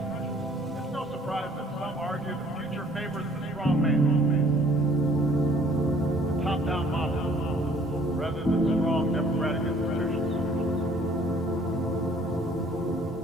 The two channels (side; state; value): both; normal; correlation 0.58